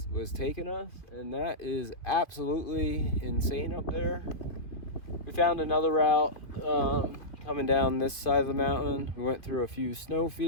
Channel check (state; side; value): late; right; 2.5 ms